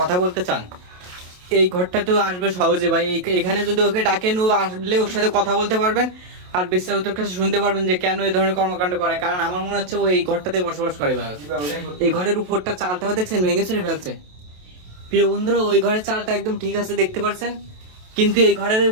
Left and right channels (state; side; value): late; left; 28 ms